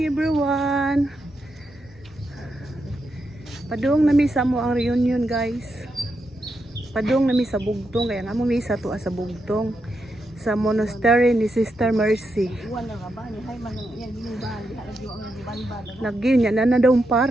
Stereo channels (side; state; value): both; normal; correlation 0.84